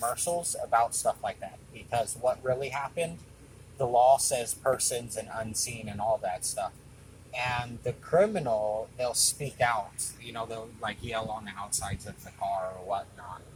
about stuff like that, because what really happened, the law says persons and unseen and all that stuff. And the criminal, they'll speak out. They'll like yell on the outsides of the car or whatnot.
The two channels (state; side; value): identical; both; correlation 1.00